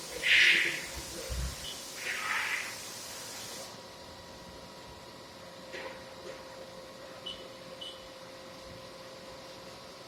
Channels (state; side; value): identical; both; correlation 1.00